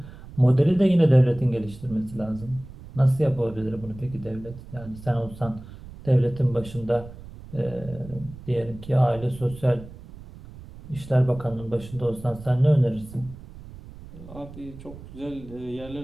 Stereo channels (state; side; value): noise; right; rumble, 16 dB below the sound